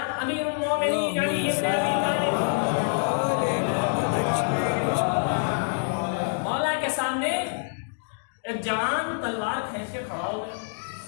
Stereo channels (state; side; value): silent; right; digital silence